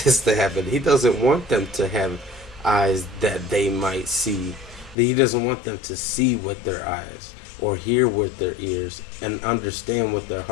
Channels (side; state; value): right; drops out; at 5.0 s